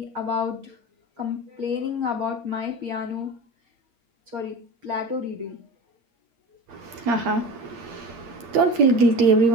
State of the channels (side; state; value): left; late; 8.6 ms